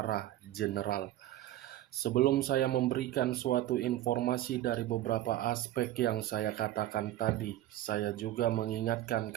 general. Sebelum saya memberikan suatu informasi dari beberapa aspek yang saya katakan tadi, saya juga mengingatkan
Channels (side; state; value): left; quieter; 14.1 dB